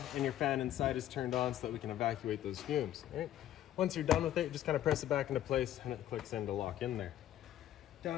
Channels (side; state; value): right; quieter; 12.2 dB